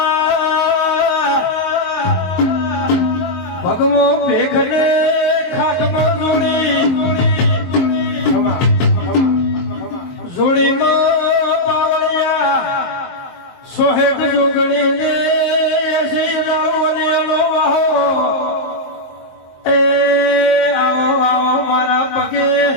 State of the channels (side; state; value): right; late; 23 ms